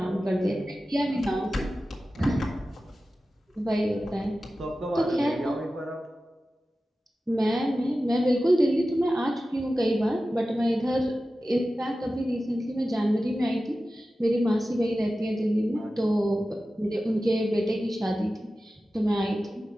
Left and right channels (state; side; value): normal; both; correlation 0.94